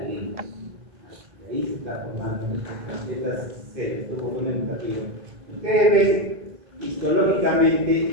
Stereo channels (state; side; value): late; left; 2.5 ms